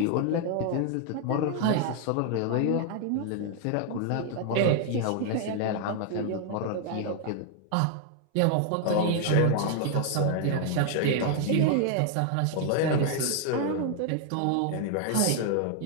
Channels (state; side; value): different; both; correlation 0.00